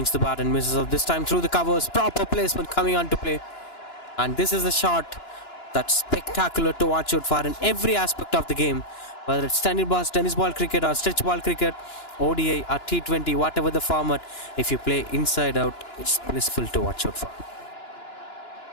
the bat and misses up. This time through the covers. Proper placement coming on to play. And this is a shot that's spectacular to watch out for in every aspect of the game. Whether it's tennis ball cricket or stretch ball cricket, ODI or T20, whatever the format, if you play inside out, it's blissful to watch out for.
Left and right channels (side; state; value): right; late; 2.9 ms